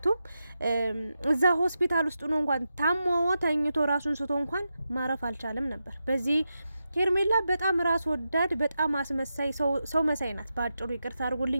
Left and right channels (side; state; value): both; inverted; correlation -0.88